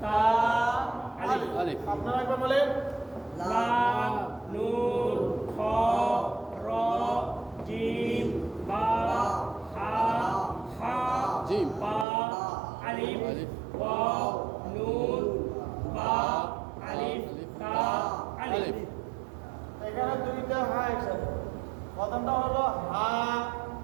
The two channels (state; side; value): drops out; left; at 12.1 s